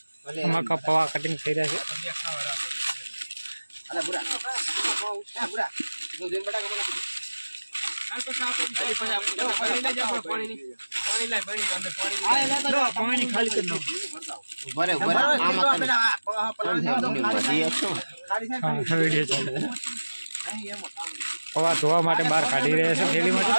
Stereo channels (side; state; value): both; inverted; correlation -1.00